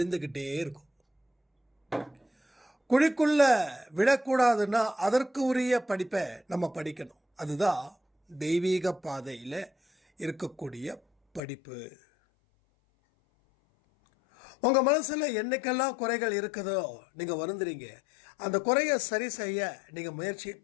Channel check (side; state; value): right; drops out; at 11.4 s